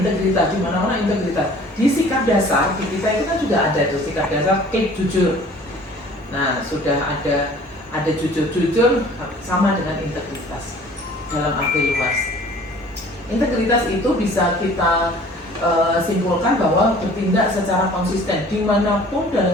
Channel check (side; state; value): both; normal; correlation 0.50